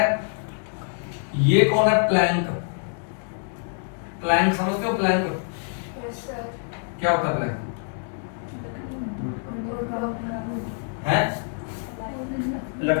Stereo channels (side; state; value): right; silent; 58 dB below the other